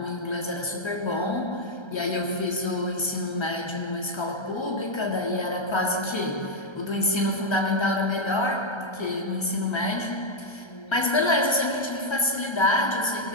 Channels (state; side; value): late; right; 1.3 ms